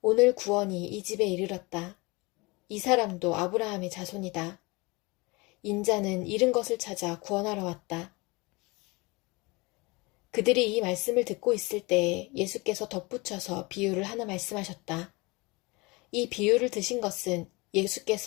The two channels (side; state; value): right; quieter; 25.4 dB